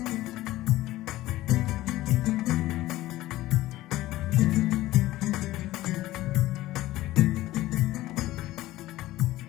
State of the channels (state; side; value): quieter; right; 16.4 dB